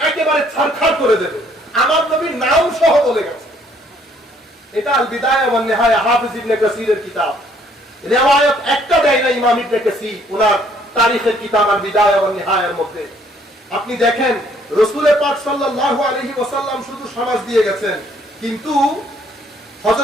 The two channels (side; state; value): both; normal; correlation 0.64